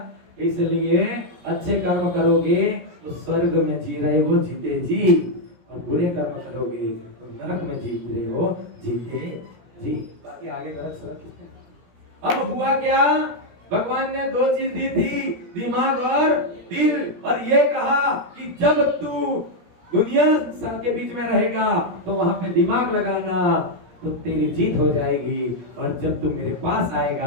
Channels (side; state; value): left; late; 17 ms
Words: इसलिए अच्छे कर्म करोगे तो स्वर्ग में जी रहे हो जीते जी, और बुरे कर्म करोगे तो नरक में जी रहे हो जीते जी। बाकी आगे गलत सड़क। अब हुआ क्या? भगवान ने दो चीज दी थी, दिमाग और दिल, और ये कहा कि जब तू दुनिया के बीच में रहेगा तो वहां पे दिमाग लगाना तो तेरी जीत हो जाएगी, और जब तू मेरे पास